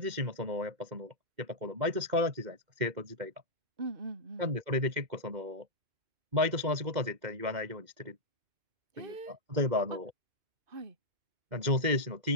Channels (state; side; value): late; left; 2.1 ms